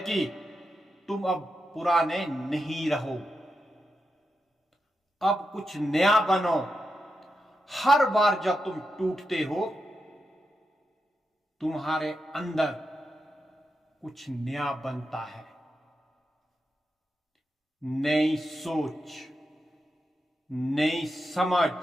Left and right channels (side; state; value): both; normal; correlation 0.87